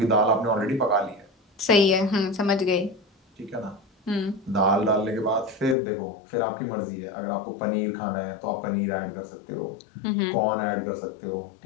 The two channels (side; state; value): right; drops out; at 5.8 s